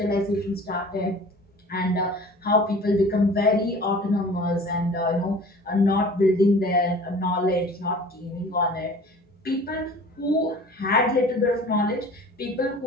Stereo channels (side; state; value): both; normal; correlation 0.44